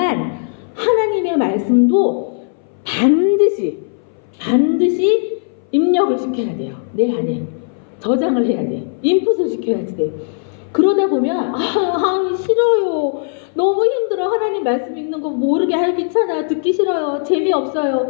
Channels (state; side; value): silent; right; 62 dB below the other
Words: 하나님의 말씀도 반드시 입력을 시켜야 돼요. 내 안에 저장을 해야 돼. 인풋을 시켜야지 돼. 그러다 보면 싫어요. 너무 힘들어. 하나님 말씀 읽는 거 모르게 귀찮아. 듣기 싫어요.